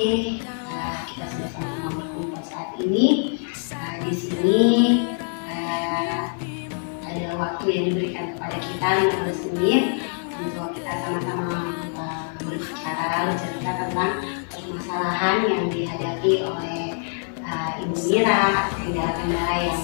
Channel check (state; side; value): silent; right; 56 dB below the other